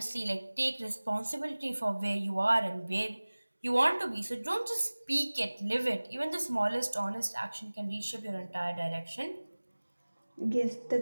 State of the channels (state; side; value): inverted; both; correlation -1.00